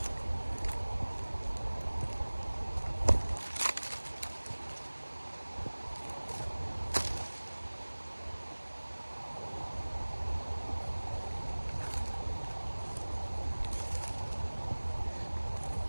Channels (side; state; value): both; inverted; correlation -1.00